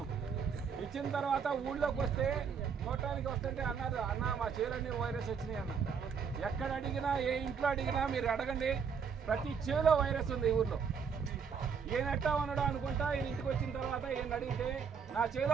ఇచ్చిన తర్వాత ఊళ్ళోకి వస్తే చూడటానికి వస్తుంటే అన్నారు, అన్న మా చేలన్నీ వైరస్ వచ్చినాయి అన్న. ఎక్కడ అడిగినా, ఏ ఇంట్లో అడిగినా మీరు అడగండి, ప్రతి చేలో వైరస్ ఉంది ఈ ఊర్లో. ఈయన ఎట్టా ఉన్నాడు అనుకుంటా. ఈయన ఇంటికి వచ్చిన తర్వాత ఈయన అడిగితే నా చేలో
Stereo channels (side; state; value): left; quieter; 6.4 dB